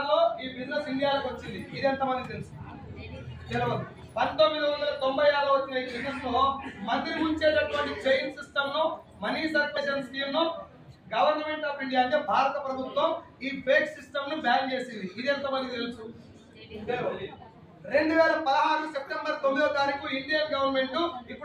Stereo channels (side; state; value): both; identical; correlation 1.00